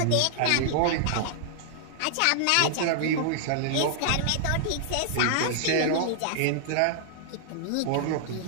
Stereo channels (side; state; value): both; different; correlation -0.01